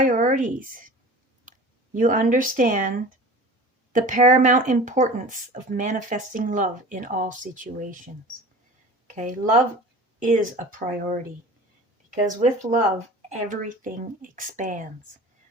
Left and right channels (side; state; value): both; normal; correlation 0.39